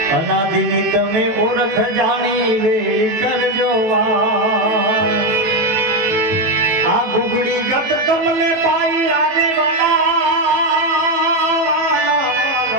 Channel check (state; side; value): late; left; 18 ms